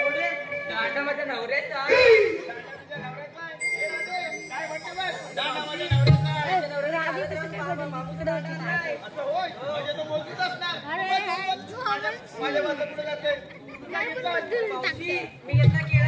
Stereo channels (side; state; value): both; identical; correlation 1.00